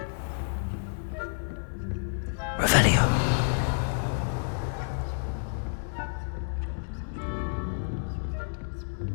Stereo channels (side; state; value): right; silent; digital silence